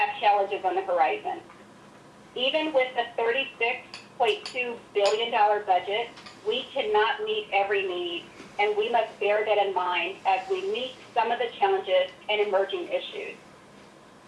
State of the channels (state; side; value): identical; both; correlation 1.00